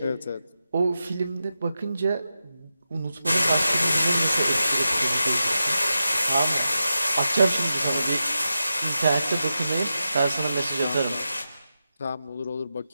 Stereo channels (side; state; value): both; inverted; correlation -0.90